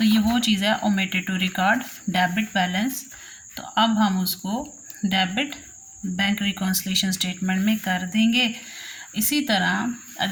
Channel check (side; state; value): both; identical; correlation 1.00